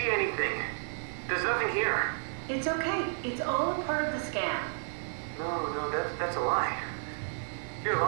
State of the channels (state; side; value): silent; left; 57 dB below the other